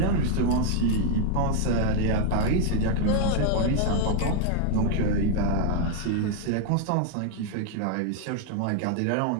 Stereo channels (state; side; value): different; both; correlation -0.01